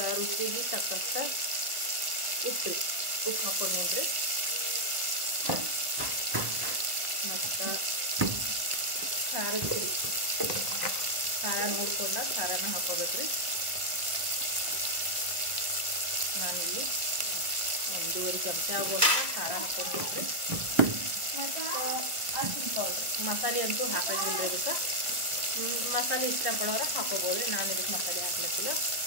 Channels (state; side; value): late; left; 1.5 ms